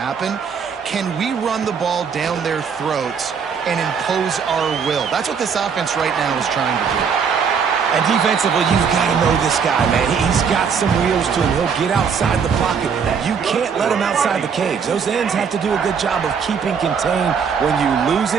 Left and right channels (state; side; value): quieter; left; 6.5 dB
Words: Can we run the ball down their throats and impose our will? That's what this offense right now is trying to do. And defensively, you've got to know this guy, man. He's got some wheels to him. He'll get outside the pocket. You can't let him outside the cage. Those ends have to do a good job of keeping contained. When you lose